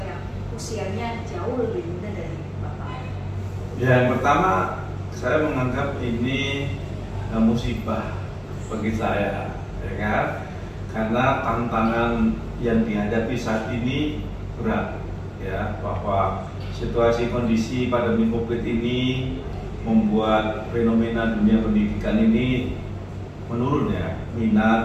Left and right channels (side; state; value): both; identical; correlation 1.00